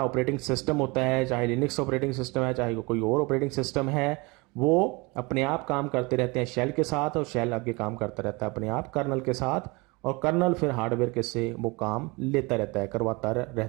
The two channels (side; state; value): left; quieter; 26.3 dB